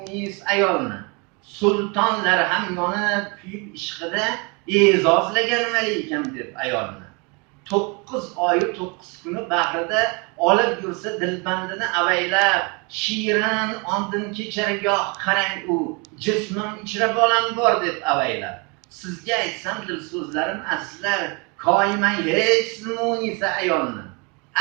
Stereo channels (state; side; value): quieter; left; 31.2 dB